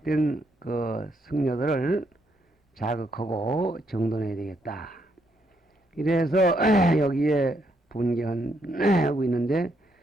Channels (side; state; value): both; normal; correlation 0.75